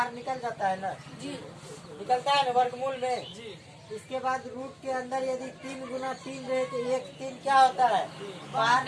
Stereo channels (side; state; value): both; identical; correlation 1.00